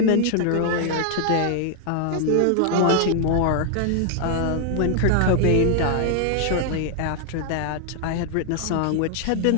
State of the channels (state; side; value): different; both; correlation 0.00